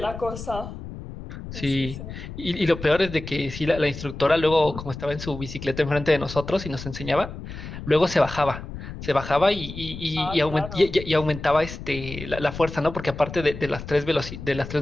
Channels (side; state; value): left; noise; rumble, 10 dB below the sound